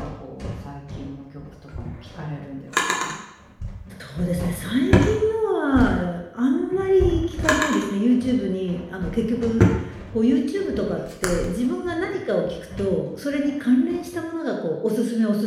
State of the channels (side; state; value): both; identical; correlation 1.00